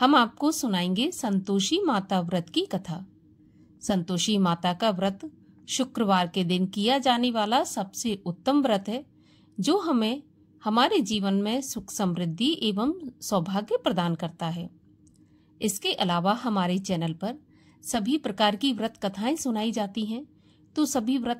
आपको सुनाएंगे संतोषी माता व्रत की कथा। संतोषी माता का व्रत शुक्रवार के दिन किया जाने वाला सबसे उत्तम व्रत है, जो हमें हमारे जीवन में सुख समृद्धि एवं सौभाग्य प्रदान करता है। इसके अलावा हमारे चैनल पर सभी प्रकार की व्रत कथाएं सुनाई जाती हैं, तो सभी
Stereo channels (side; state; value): both; identical; correlation 1.00